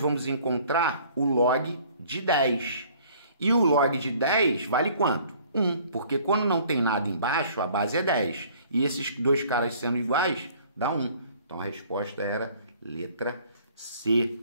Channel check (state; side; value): inverted; both; correlation -0.55